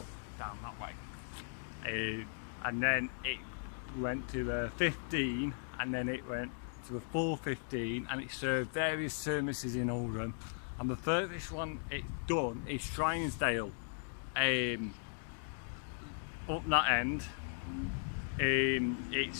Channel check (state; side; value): silent; right; digital silence